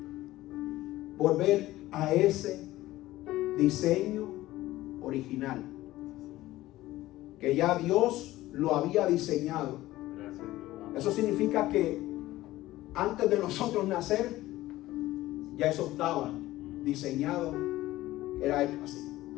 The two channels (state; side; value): quieter; right; 16.4 dB